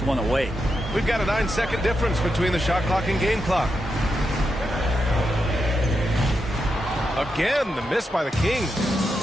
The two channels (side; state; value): both; normal; correlation 0.85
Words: one away. We've got a 9-second difference between the shot clock and game clock. Again, the miss by the Kings.